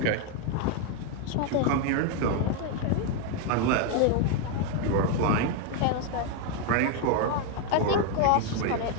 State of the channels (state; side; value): different; both; correlation 0.01